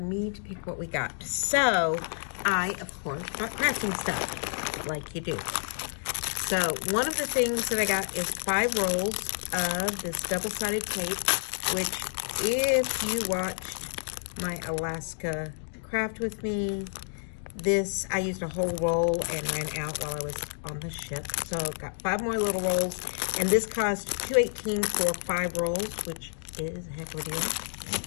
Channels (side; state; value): right; silent; digital silence